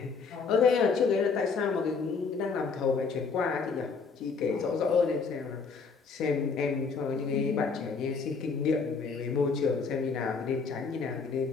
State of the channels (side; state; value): right; quieter; 5.1 dB